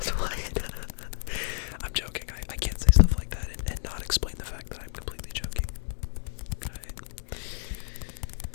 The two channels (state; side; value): silent; right; digital silence